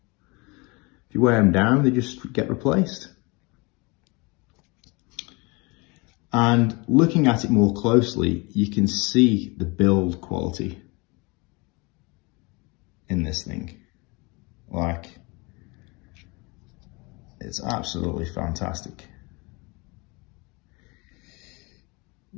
you wear them down, they just get replaced. And looking at it more closely, you can see the build quality in this thing. Like, it's absolutely fantastic.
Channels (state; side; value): quieter; right; 27.0 dB